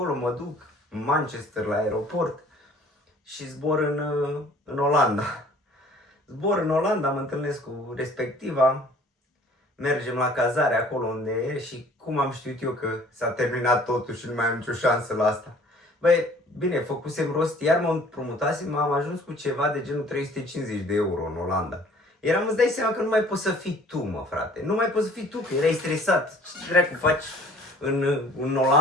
mă duc în Manchester la aeroport și zbor în Olanda. Zbor în Olanda, mă întâlnesc cu respectiva, mergem la cazare acolo unde e și cum am știut eu că s-a terminat totul și nu mai am nicio șansă la asta. Bine, făcusem rost, iar mă împrumutasem, am ajuns cu ceva de genul 350 de euro în Olanda. Îți dai seama că nu mai poți să fii tu, mă, frate. Nu mai poți să fii tu, că erai stresat. Ce dracu faci în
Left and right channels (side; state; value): both; normal; correlation 0.53